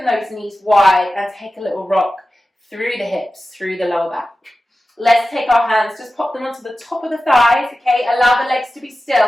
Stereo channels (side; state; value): both; normal; correlation 0.94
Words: those knees wide and take a little rock through the hips, through the lower back. Let's take our hands, just pop them onto the top of the thighs, okay? Allow the legs to be